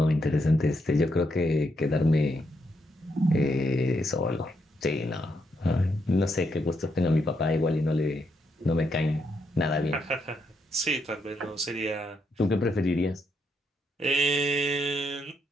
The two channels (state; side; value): normal; both; correlation 0.79